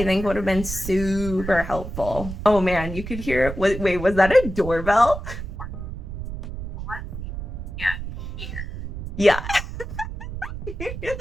think would have been super helpful. Oh man, you could hear it. Wait, was that a doorbell? Yeah. You hear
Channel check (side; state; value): right; noise; rumble, 8 dB below the sound